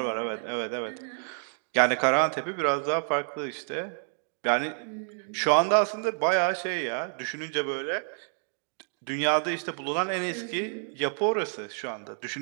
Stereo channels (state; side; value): silent; left; 56 dB below the other